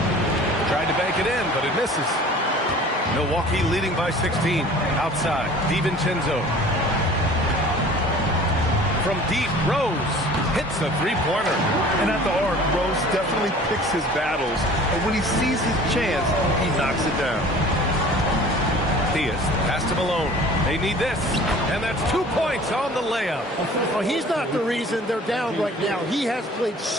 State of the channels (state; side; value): normal; both; correlation 0.46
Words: Tried to bank it in, but it misses. Milwaukee leading by 16. Outside, DiVincenzo. From deep, Rose hits a 3-pointer. And at the arc, Rose definitely picks his battles. And when he sees his chance, he knocks it down. Theis, pass to Malone. They need this. And that's 2 points on the layup. Well, he's not the reason they're down right now. He has played